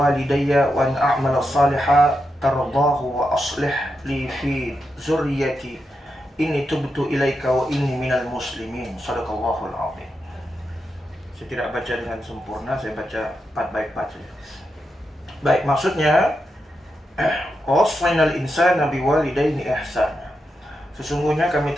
وأن أعمل صالحا ترضاه وأصلح لي في ذريتي إني تبت إليك وإني من المسلمين. Sadaqallahul azim. Saya tidak baca dengan sempurna, saya baca part by part saja. Baik, maksudnya wassaynal insana biwalidayni ihsana. Sesungguhnya kami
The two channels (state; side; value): normal; both; correlation 0.86